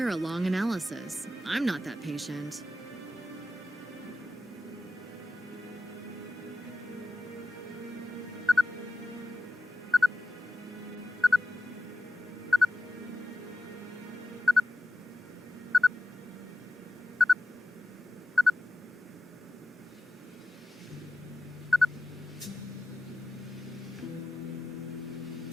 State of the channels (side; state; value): both; normal; correlation 0.93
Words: a long analysis. I'm not that patient.